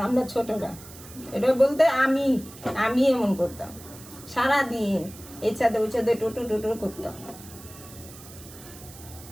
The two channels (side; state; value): right; noise; hiss, 18 dB below the sound